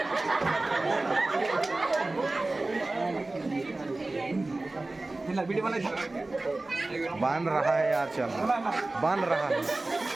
बांध रहा है यार, चल बांध रहा है।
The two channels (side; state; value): left; quieter; 3.0 dB